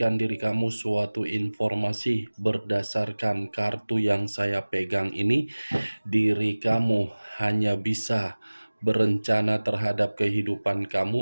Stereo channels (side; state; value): both; inverted; correlation -1.00